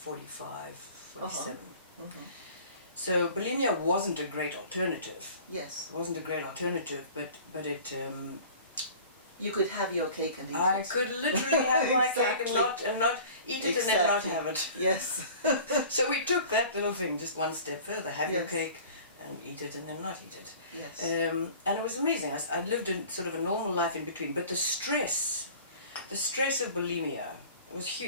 47. So bulimia wasn't a great alternative. Yes. It wasn't a great alternative, but it... you could have your cake and eat it. I could literally have my cake and not eat it and then not have it. Yes. So we took that little thing just one step further. Have your Yes. cake and eat it and then not eat it. Yes. And it was amazing. I lived in sort of a normal life in between. But the stress of bulimia was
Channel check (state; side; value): inverted; both; correlation -0.44